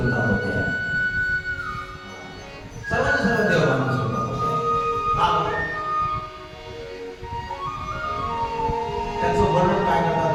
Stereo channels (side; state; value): both; identical; correlation 1.00